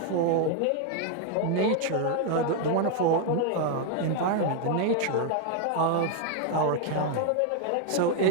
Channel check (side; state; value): both; different; correlation 0.01